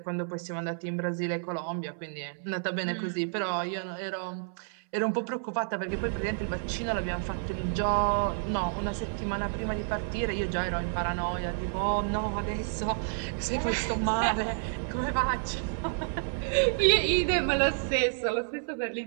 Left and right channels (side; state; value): left; silent; 58 dB below the other